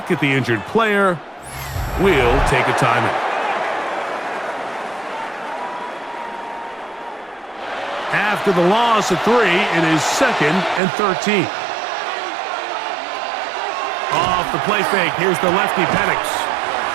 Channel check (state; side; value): drops out; left; at 10.8 s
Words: at the injured player, we'll take a timeout. After the loss of 3, it is 2nd and 13. Off the play fake, here's the lefty Penix.